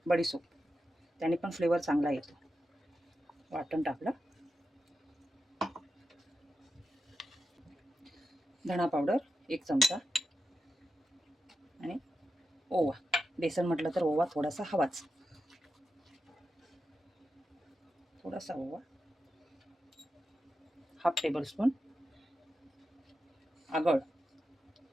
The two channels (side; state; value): both; normal; correlation 0.89